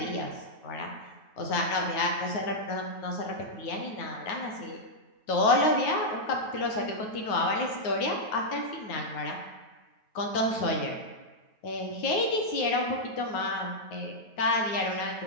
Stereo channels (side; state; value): right; late; 9.3 ms